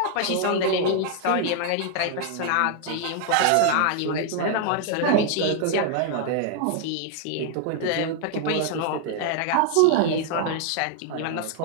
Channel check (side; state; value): both; different; correlation 0.00